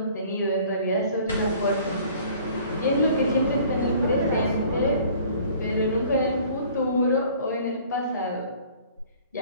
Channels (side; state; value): both; inverted; correlation -0.52